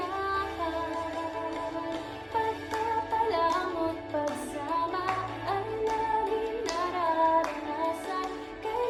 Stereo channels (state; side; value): identical; both; correlation 1.00